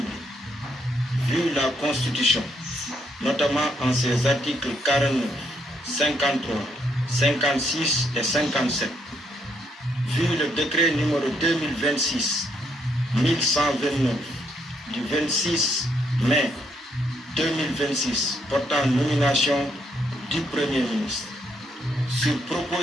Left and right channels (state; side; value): normal; both; correlation 0.74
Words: vu la Constitution, notamment en ses articles 49, 53, 56 et 57, vu le décret numéro 2026-1129 du 26 mai 2026 portant nomination du Premier ministre, sur